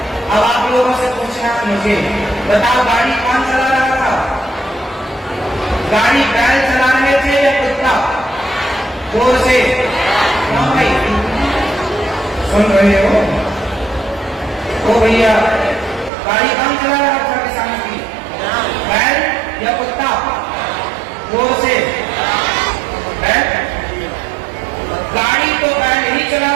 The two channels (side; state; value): left; drops out; at 16.1 s